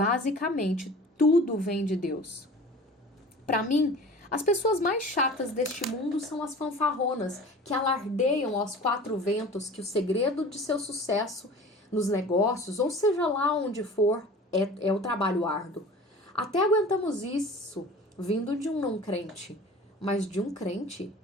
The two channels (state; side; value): normal; both; correlation 0.41